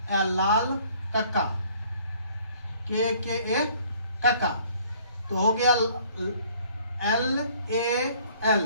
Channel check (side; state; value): both; inverted; correlation -0.58